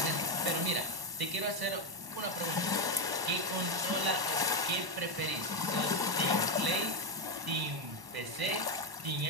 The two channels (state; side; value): late; left; 1.1 ms